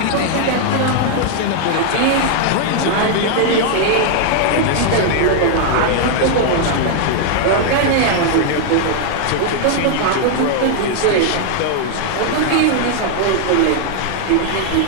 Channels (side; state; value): both; different; correlation 0.00